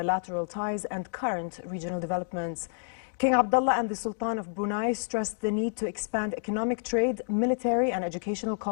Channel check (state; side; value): silent; right; digital silence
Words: ties and current regional developments. King Abdullah and the Sultan of Brunei stressed the need to expand economic trade, military and educational